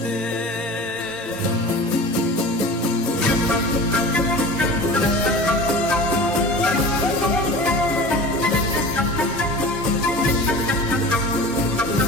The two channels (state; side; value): normal; both; correlation 0.37